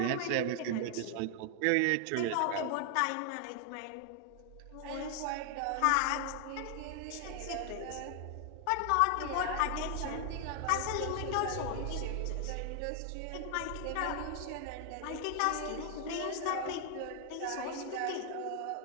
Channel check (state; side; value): different; both; correlation 0.00